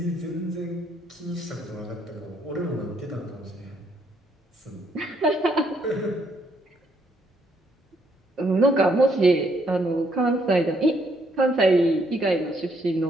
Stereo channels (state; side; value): normal; both; correlation 0.71